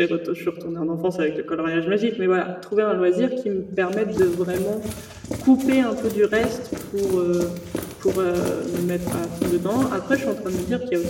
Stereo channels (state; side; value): identical; both; correlation 1.00